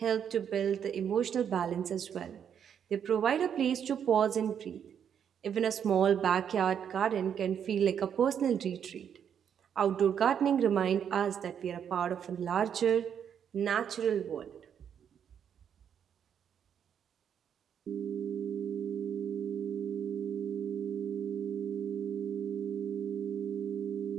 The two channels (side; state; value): left; quieter; 8.3 dB